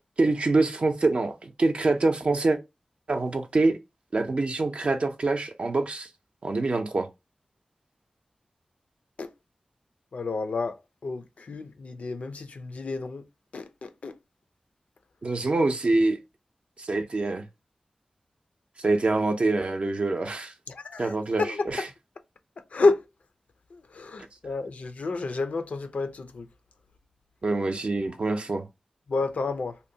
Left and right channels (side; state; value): both; normal; correlation 0.92